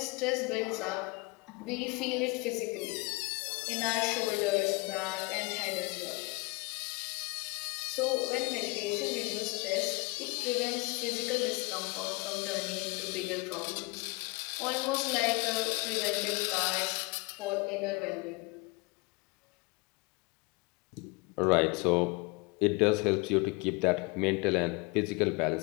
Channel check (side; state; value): right; quieter; 26.7 dB